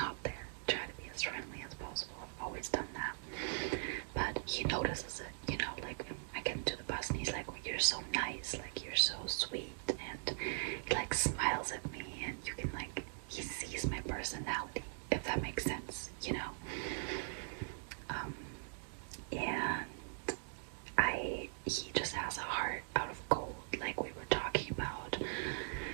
there. Try to be as friendly as possible. I've always done that. But he notices it, you know, like I get into the bus and he's like, well, you're so nice, like you're so sweet, and he like smiles at me, and you can like, he sees my personality, if that makes sense, you know. And he just has a heart out of gold, like we were talking about,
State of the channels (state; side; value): silent; left; digital silence